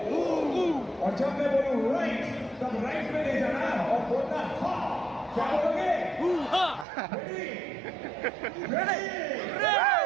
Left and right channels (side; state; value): left; drops out; at 6.9 s